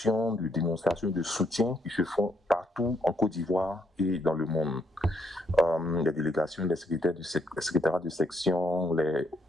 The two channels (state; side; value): normal; both; correlation 0.73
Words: de dénonciation, de soutien qui se font partout en Côte d'Ivoire et dans le monde. Les délégations, les secrétariats de section, les